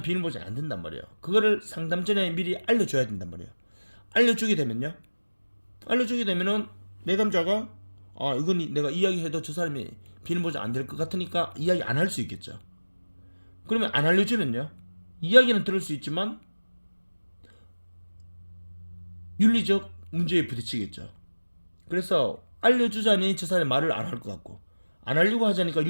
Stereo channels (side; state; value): both; inverted; correlation -1.00